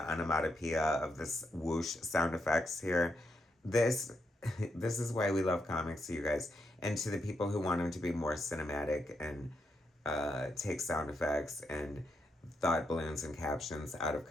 of this whoosh sound effects here. This is why we love comics, you guys. And to the people who want them to be more cinematic and take sound effects and thought balloons and captions out of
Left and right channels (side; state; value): both; normal; correlation 0.81